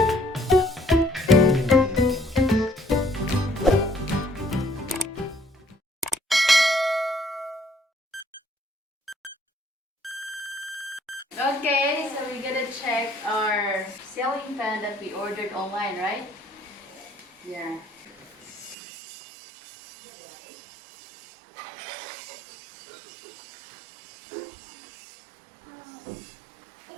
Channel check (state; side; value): drops out; left; at 18.8 s